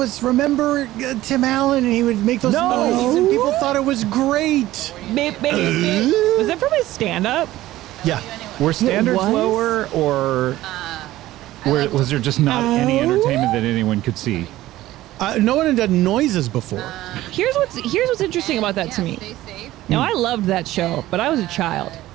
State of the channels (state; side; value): quieter; left; 15.7 dB